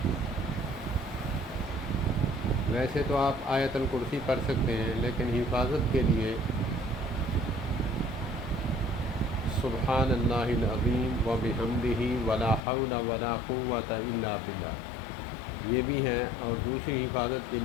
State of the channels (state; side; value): drops out; right; at 12.6 s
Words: ویسے تو آپ آیت الکرسی پڑھ سکتے ہیں، لیکن حفاظت کے لیے سبحان اللہ العظیم و بحمدہ ولا حول ولا قوۃ الا باللہ یہ بھی ہے، اور دوسری حفاظت کے